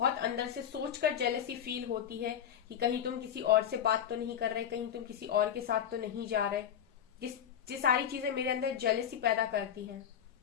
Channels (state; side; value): quieter; right; 9.2 dB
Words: अंदर से सोचकर जेलसी फील होती है कि कहीं तुम किसी और से बात तो नहीं कर रहे, कहीं तुम किसी और के साथ तो नहीं जा रहे। ये सारी चीजें मेरे अंदर जेलसी पैदा करती हैं।